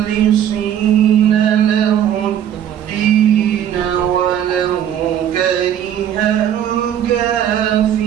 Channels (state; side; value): quieter; left; 10.0 dB